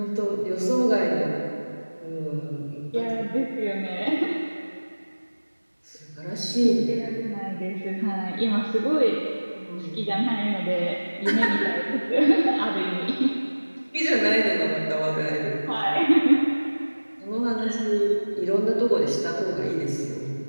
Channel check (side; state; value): both; inverted; correlation -1.00